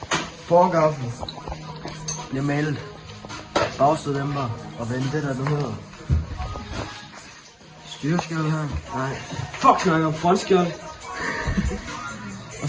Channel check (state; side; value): identical; both; correlation 1.00